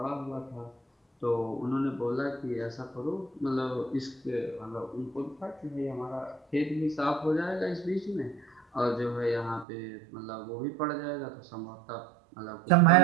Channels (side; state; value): left; drops out; at 9.7 s